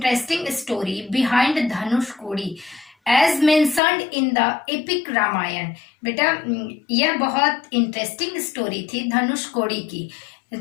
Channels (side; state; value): right; drops out; at 3.8 s